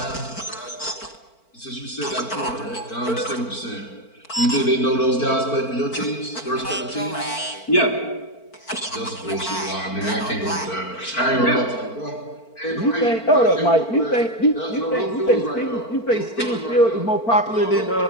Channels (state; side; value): late; right; 4.5 ms